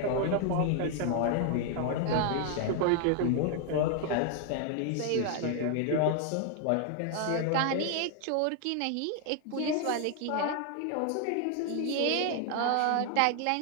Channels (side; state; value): both; different; correlation 0.00